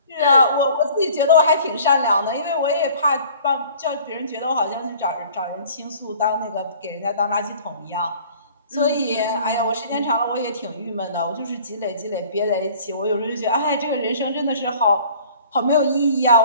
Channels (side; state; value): both; inverted; correlation -0.50